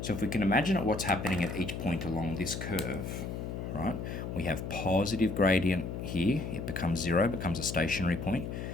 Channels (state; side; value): noise; left; hum, 5 dB below the sound